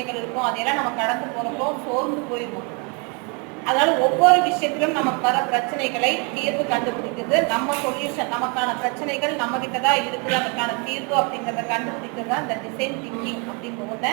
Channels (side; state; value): left; quieter; 33.3 dB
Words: இருக்கும், அதையெல்லாம் நம்ம கடந்து போறப்போ சோர்ந்து போயிடுவோம். அதனால ஒவ்வொரு விஷயத்திலும் நமக்கு வர பிரச்சனைகளை தீர்வு கண்டுபிடிக்கிறது நம்ம சொல்யூஷன். நமக்கான பிரச்சனைகள் நம்ம கிட்ட தான் இருக்குது, அதுக்கான தீர்வு அப்படிங்கிறத கண்டுபிடிக்கிறது தான் இந்த டிசைன் திங்கிங் அப்படிங்கிறத